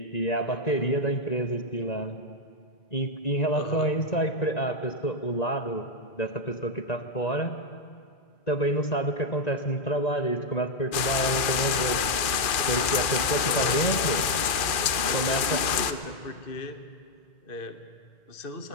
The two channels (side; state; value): right; late; 2.4 ms